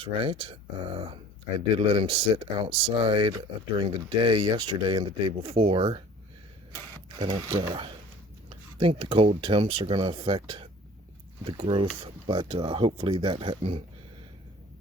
right. I did let him sit outside during the day yesterday and the day before. I don't think the cold temps are going to affect the growth, but hopefully that hadn't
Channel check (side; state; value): both; normal; correlation 0.48